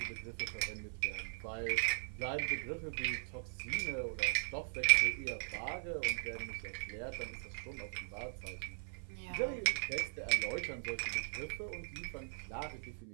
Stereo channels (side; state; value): left; silent; 51 dB below the other